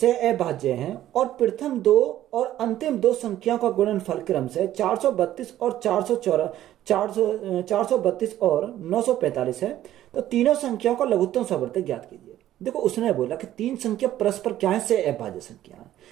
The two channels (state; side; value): quieter; left; 13.0 dB